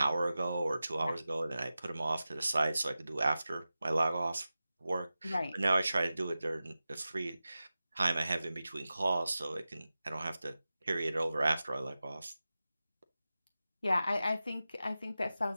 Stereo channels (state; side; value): inverted; both; correlation -0.94